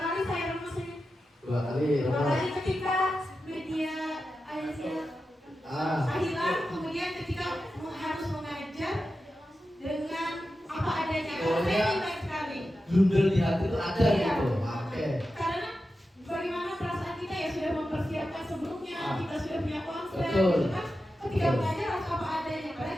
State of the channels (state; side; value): normal; both; correlation 0.91